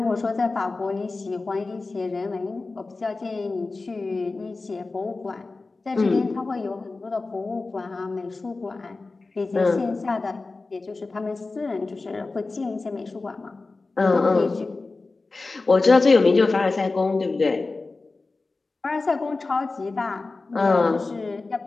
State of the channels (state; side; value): quieter; right; 3.6 dB